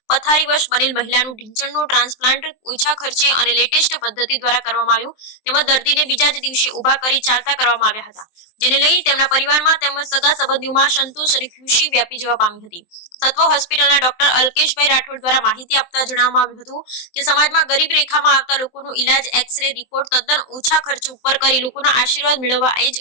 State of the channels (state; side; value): late; right; 23 ms